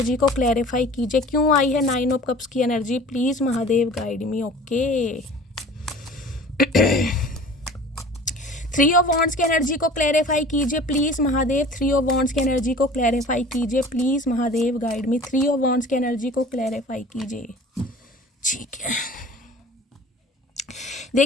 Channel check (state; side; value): normal; both; correlation 0.44